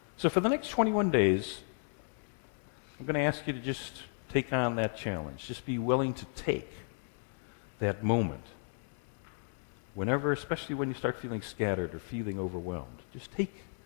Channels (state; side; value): silent; right; digital silence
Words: So for the next 21 days, I'm going to ask you to just take on that challenge. Just be willing to take that moment. Whenever, especially when you start feeling scattered or feeling overwhelmed, just take